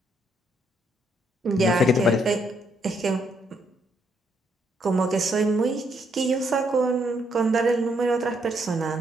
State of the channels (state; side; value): normal; both; correlation 0.74